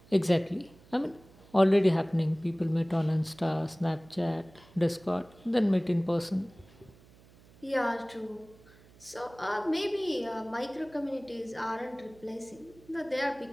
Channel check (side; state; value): right; noise; hum, 25 dB below the sound